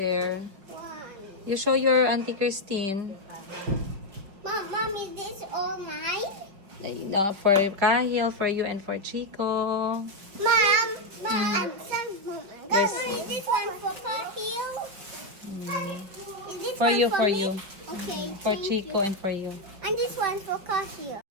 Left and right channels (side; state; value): left; late; 5.2 ms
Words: You show your auntie Christine. Mom, is this all mine? For Kahil, for you, and for Chico. Mom, I'm sorry, Mom. Yes. Is this one for Kahil? Is this For one you, for for me? you. Okay, For thank Chico you. and for you. And this one for Kahil.